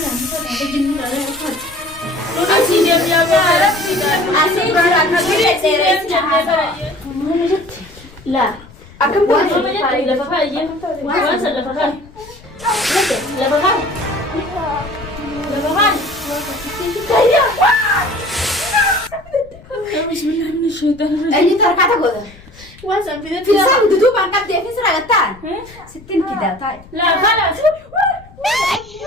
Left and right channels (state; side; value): noise; left; rumble, 22 dB below the sound